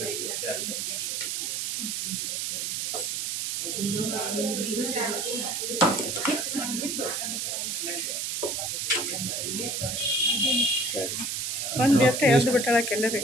ಒಂದು ವ್ಯಕ್ತಿ ಎದ್ದು ಬಿಟ್ಟಾಳಕ್ಕೆ ಎಲ್ಲರಿ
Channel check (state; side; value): noise; right; hiss, 1 dB below the sound